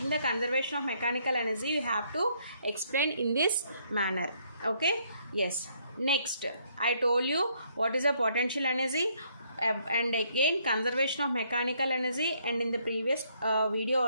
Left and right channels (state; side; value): inverted; both; correlation -0.69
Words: the conservation of mechanical energy, you have to explain in this manner. Okay, yes. Next, I told you what is the potential energy, and again conservation of mechanical energy, and in the previous video